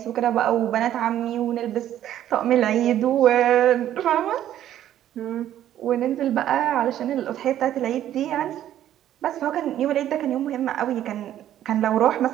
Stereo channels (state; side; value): quieter; left; 11.7 dB